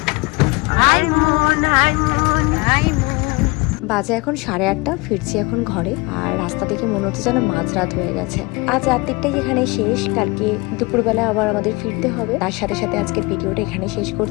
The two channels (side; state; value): right; quieter; 25.5 dB